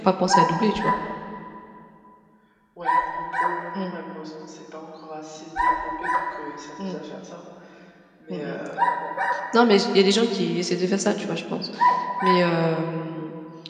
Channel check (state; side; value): identical; both; correlation 1.00